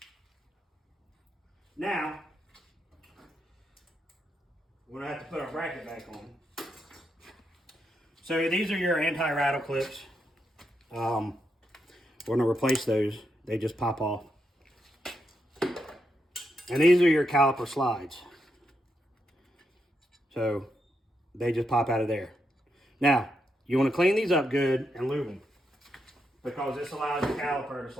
Now, we're going to have to put our bracket back on. So these are your anti-rattle clips. We're going to replace those. They just pop off. And these are your caliper slides. So they just pop out of there. Now, you want to clean these up good and lube them, because this allows the caliper to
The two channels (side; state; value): both; normal; correlation 0.83